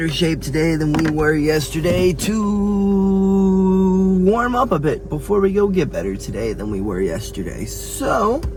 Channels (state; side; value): identical; both; correlation 1.00